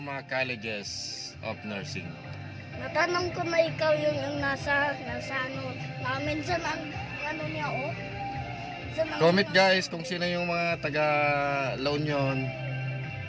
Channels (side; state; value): both; identical; correlation 1.00